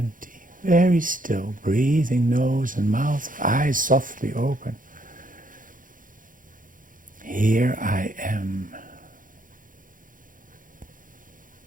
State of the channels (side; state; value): left; late; 0.39 ms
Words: Very still, breathing, nose and mouth, eyes softly open. Here I am.